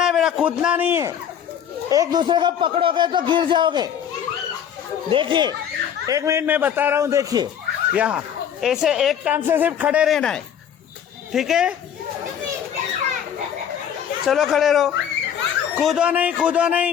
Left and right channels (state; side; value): quieter; right; 8.9 dB